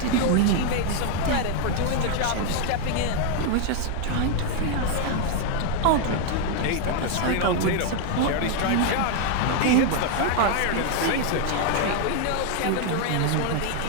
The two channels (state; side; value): different; both; correlation 0.00